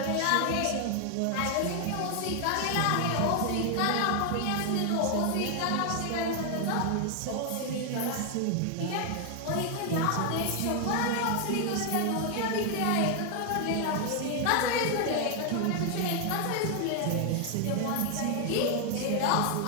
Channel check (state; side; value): different; both; correlation 0.00